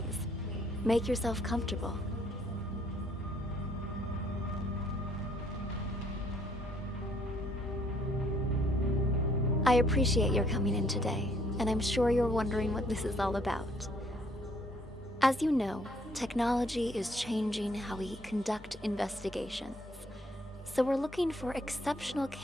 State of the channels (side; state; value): both; normal; correlation 0.66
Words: make yourself comfortable. I appreciate your coming in today, and I'm sure you're wondering what this is all about. As you know, technology is changing how we conduct investigations. So we're looking for exceptional